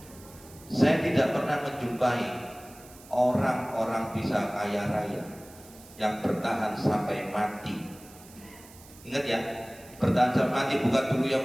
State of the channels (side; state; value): right; noise; hiss, 21 dB below the sound